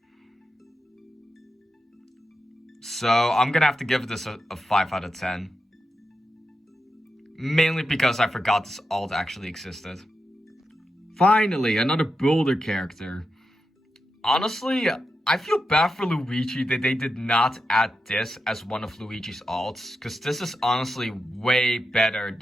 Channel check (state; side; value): normal; both; correlation 0.88